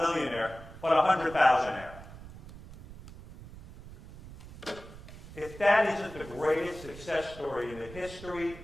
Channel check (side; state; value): right; noise; rumble, 16 dB below the sound